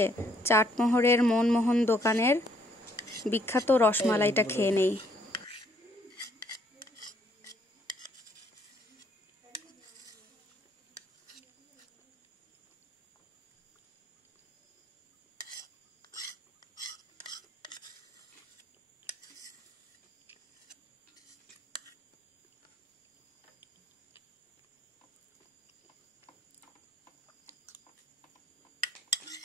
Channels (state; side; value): normal; both; correlation 0.67